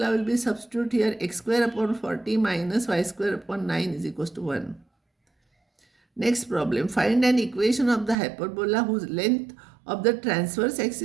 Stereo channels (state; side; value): drops out; left; at 8.2 s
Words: will be substitute here, x square upon 40 minus y square upon 9 is equals to 1. Next problem. Find an equation of the hyperbola whose length of the transverse